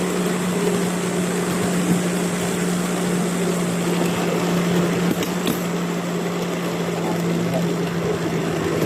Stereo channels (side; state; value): both; identical; correlation 1.00